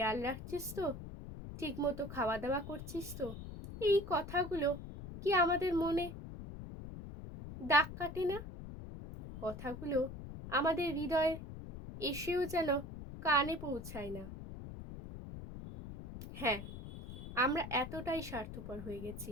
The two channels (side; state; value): left; noise; rumble, 10 dB below the sound